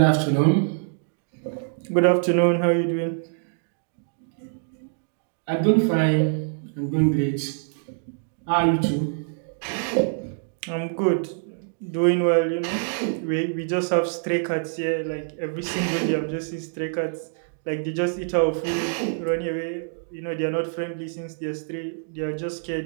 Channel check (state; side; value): silent; left; digital silence